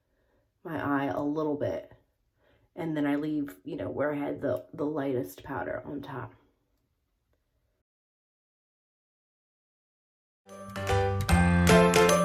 my eye a little bit, and then I leave, you know, where I had the lightest powder on top.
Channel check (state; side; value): identical; both; correlation 1.00